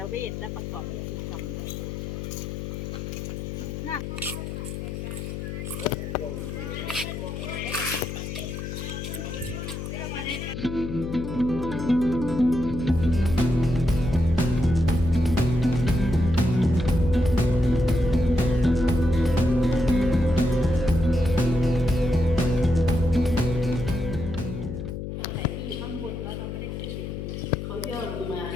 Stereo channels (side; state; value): left; noise; hum, 6 dB below the sound